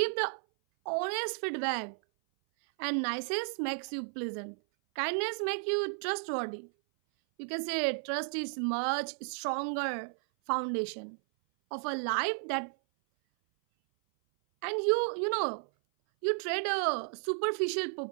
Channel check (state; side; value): silent; left; 56 dB below the other